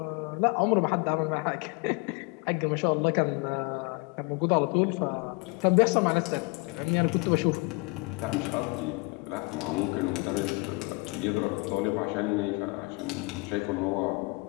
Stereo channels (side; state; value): right; quieter; 27.3 dB